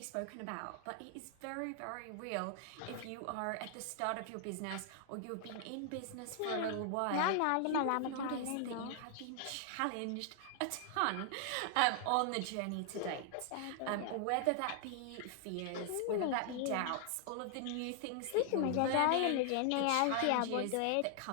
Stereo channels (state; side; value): different; both; correlation 0.00